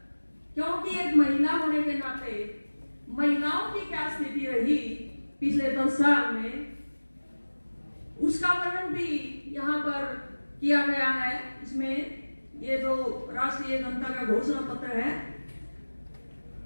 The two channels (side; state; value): both; inverted; correlation -1.00